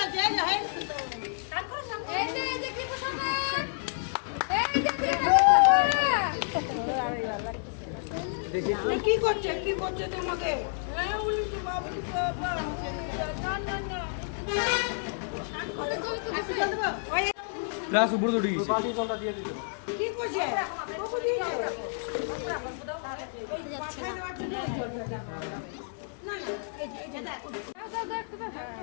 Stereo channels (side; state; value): right; silent; 58 dB below the other